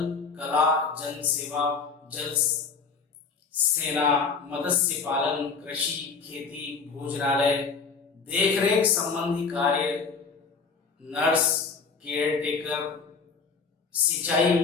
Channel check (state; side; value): quieter; right; 5.1 dB